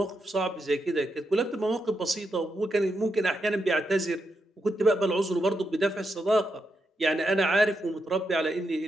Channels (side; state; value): both; normal; correlation 0.84